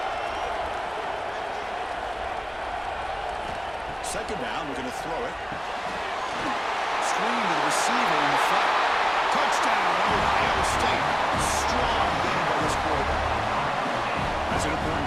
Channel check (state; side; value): identical; both; correlation 1.00